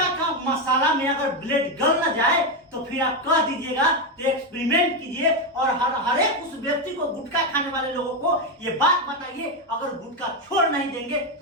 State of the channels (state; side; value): normal; both; correlation 0.08